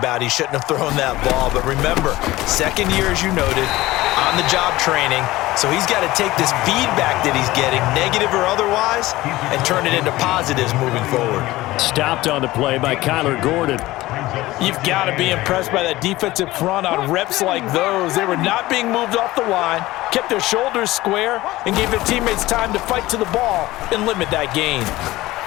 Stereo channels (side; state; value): right; quieter; 18.0 dB